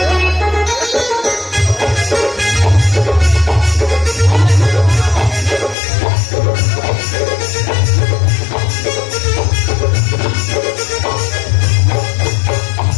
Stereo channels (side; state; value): right; drops out; at 5.8 s